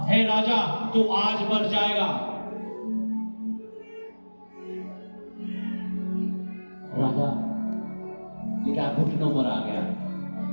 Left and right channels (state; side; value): inverted; both; correlation -1.00